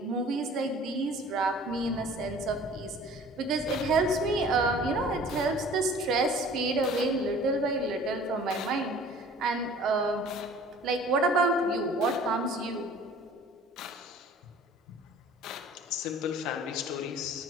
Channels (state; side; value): normal; both; correlation 0.48